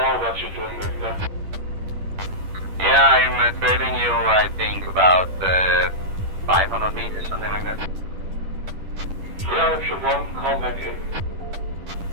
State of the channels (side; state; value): left; late; 10 ms